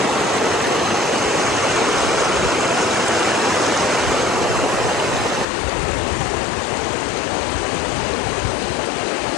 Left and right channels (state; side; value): drops out; right; at 5.5 s